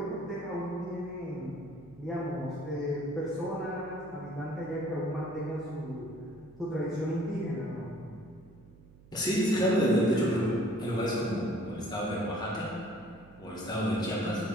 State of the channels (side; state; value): right; noise; hum, 22 dB below the sound